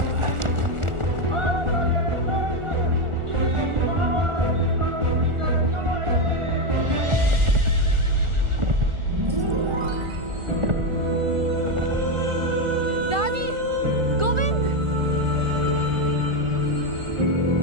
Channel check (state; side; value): late; left; 1.4 ms